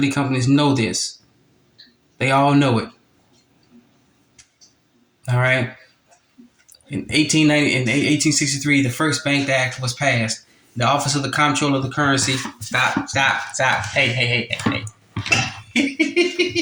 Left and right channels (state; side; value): identical; both; correlation 1.00